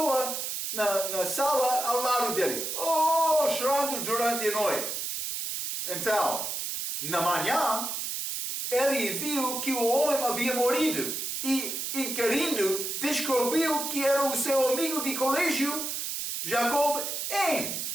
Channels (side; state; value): right; noise; hiss, 3 dB below the sound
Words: na sala ao lado dele, chorando durante a noite. Então, na manhã, ele viu que o homem havia morrido e, inquirindo, descobriu que era o seu amigo de colégio, Jacob